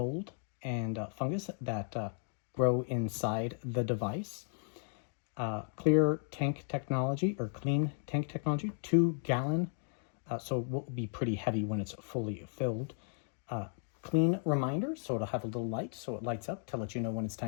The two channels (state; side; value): silent; right; 54 dB below the other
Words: and fungus that grow inside the device. Clear tank technology or clean tank technology, 2 gallon, so it will be pretty heavy when it's fully filled. Clean reminder, so it'll have a little light, so it lights up to let you know when it's